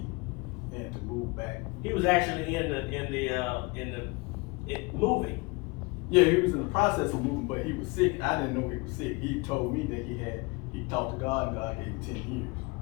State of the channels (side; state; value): right; quieter; 26.4 dB